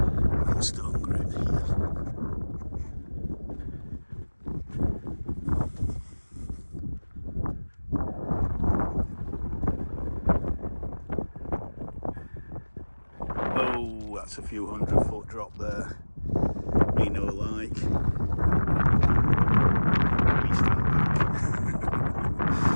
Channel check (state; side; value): inverted; both; correlation -1.00